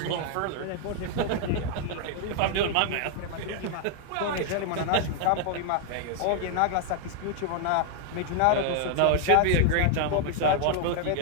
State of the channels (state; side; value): different; both; correlation 0.00